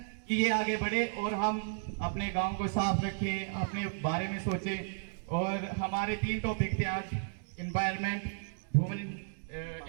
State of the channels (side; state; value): left; silent; digital silence